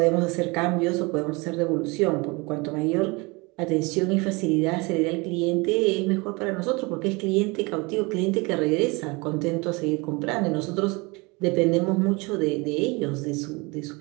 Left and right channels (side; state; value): left; quieter; 26.5 dB